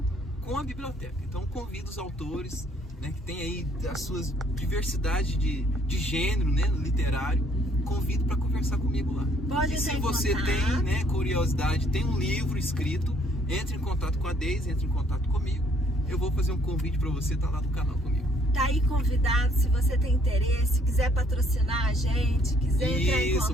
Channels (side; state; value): both; normal; correlation 0.64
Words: com a biblioteca. Então convido os autores, né, que tem aí as suas diversidade de gênero, né, literário, convido para conversar comigo lá. Pode. E se você tem, né, curiosidade, tem um livro escrito, entre em contato com a Deise, entre em contato comigo. Eu vou fazer um convite para você estar lá no canal comigo. Tá aí convidado, se você tem interesse, quiser patrocinar a gente, quiser entrar em